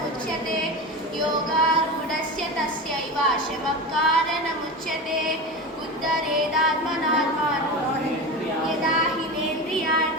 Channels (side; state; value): both; normal; correlation 0.25